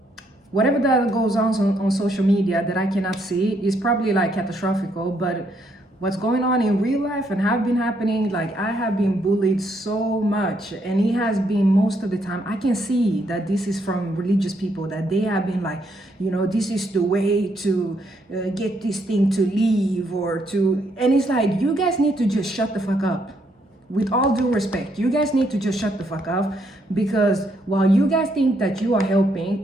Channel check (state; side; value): normal; both; correlation 0.74